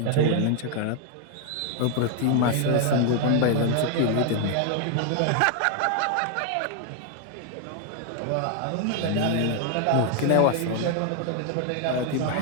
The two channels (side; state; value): both; different; correlation 0.01